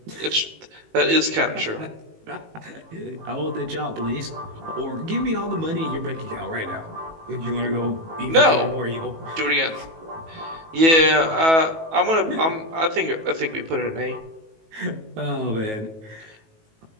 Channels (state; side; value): late; left; 18 ms